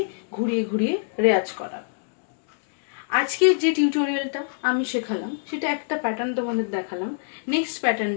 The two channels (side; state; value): right; silent; digital silence